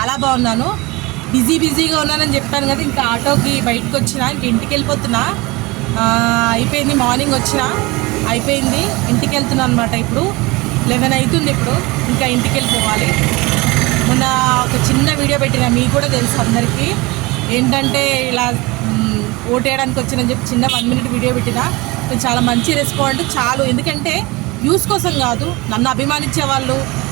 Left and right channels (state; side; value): quieter; left; 23.3 dB